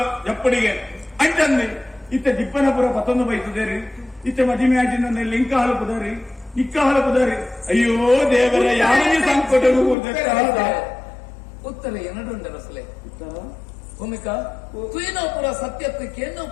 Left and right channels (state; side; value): drops out; right; at 10.0 s